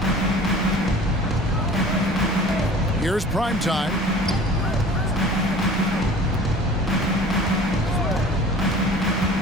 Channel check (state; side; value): normal; both; correlation 0.45